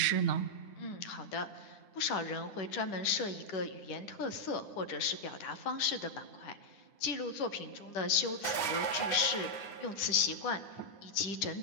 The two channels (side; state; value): right; late; 9.9 ms